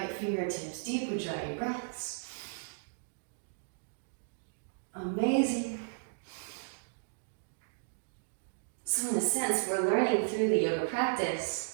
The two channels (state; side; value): silent; left; digital silence